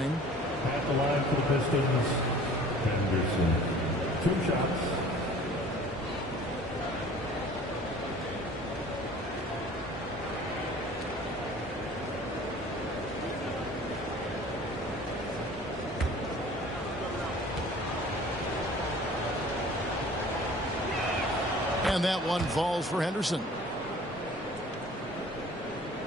At the line for the Pistons, Henderson. 2 shots. And that one falls for Henderson.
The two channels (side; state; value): both; normal; correlation 0.47